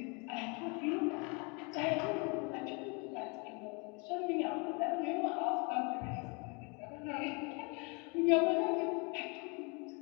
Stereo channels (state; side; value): quieter; right; 31.9 dB